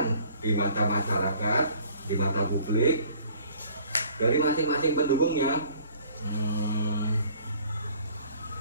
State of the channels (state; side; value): inverted; both; correlation -0.54